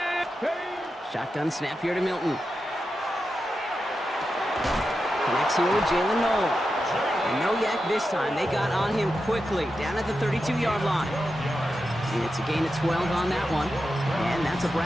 Shotgun snap here to Milton. Connects here with Jalen Noel. And no yak this time. They got on him quickly, down at the 32-yard line. And it's a gain of 12 on that one. And that's a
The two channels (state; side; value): normal; both; correlation 0.89